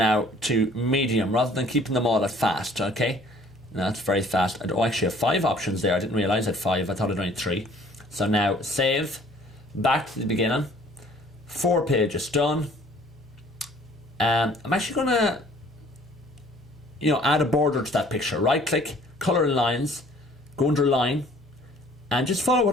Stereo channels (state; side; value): normal; both; correlation 0.55